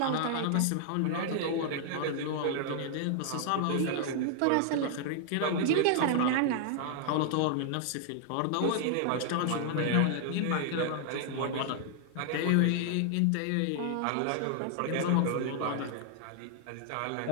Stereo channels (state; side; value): different; both; correlation -0.01